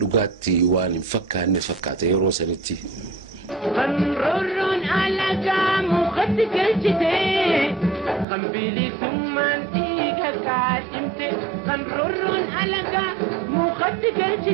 waan hin fakkaanne fakkaata yeroo sanitti. Qanroorroon alagaa mukatti galchite qambiilii summaan dhiiga kaadhimte. Qanroorroon alagaa mukatti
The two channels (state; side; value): drops out; left; at 8.2 s